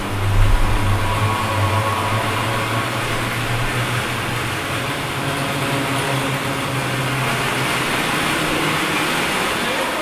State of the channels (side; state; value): both; identical; correlation 1.00